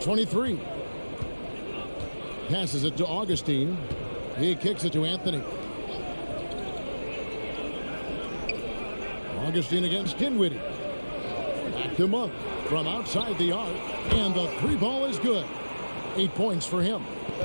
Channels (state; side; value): inverted; both; correlation -1.00